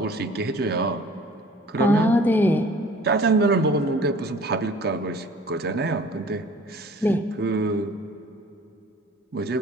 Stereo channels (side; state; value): both; normal; correlation 0.50